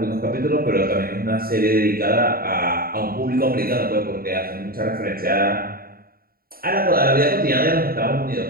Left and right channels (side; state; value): left; late; 0.43 ms